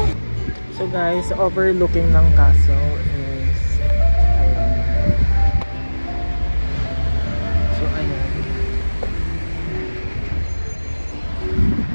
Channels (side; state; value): both; inverted; correlation -1.00